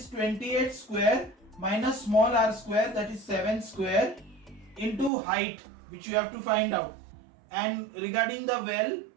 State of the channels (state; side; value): drops out; left; at 5.1 s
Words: 28 square, minus small r square, that is 7 square, into height, which you have to find out. And regarding the well,